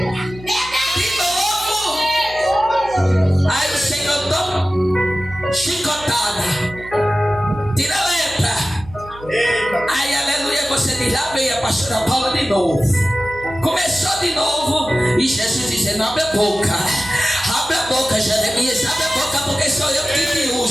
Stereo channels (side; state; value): right; noise; hum, 18 dB below the sound